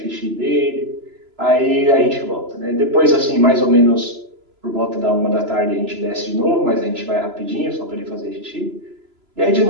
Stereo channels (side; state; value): left; late; 3.0 ms